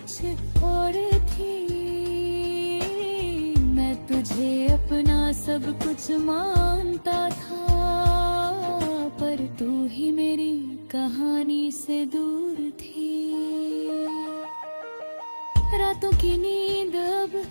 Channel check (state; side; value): inverted; both; correlation -1.00